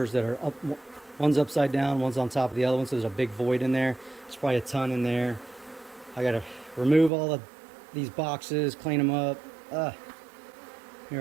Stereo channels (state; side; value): drops out; left; at 7.1 s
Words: that are up. One's upside down, one's on top of the other one, so there's a big void in there. There's probably a ton in there. I gotta remove all of these boxes, clean them up.